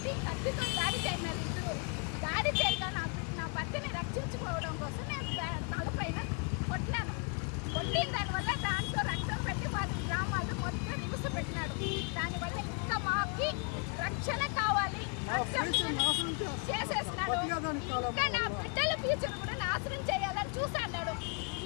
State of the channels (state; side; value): quieter; right; 35.2 dB